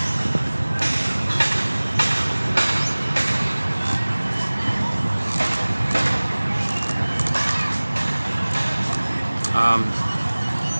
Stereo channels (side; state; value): both; inverted; correlation -1.00